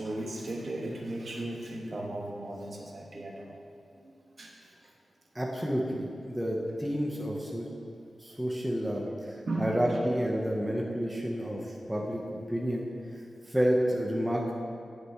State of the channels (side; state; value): both; normal; correlation 0.96